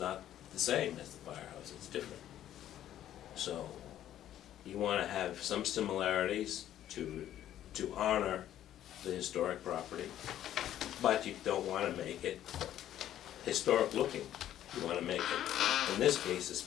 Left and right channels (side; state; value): right; quieter; 11.8 dB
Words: the same as the firehouse, it's different. So you want to have some similarities to honor the historic property, but you don't want to make it historic looking. You want to make it, in this case